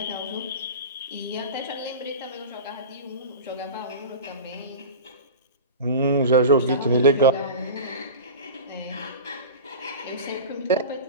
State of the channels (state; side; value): inverted; both; correlation -0.31